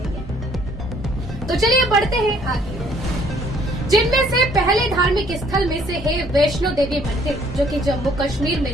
तो चलिए बढ़ते हैं आगे, जिनमें से पहले धार्मिक स्थल में से है वैष्णो देवी मंदिर जो कि जम्मू कश्मीर में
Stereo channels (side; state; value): both; normal; correlation 0.62